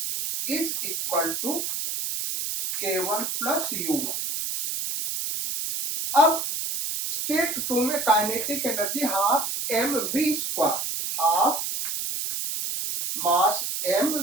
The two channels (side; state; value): right; noise; hiss, 3 dB below the sound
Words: is equal to K1 plus U1। अब स्टेट 2 में kinetic energy half mv square, half mass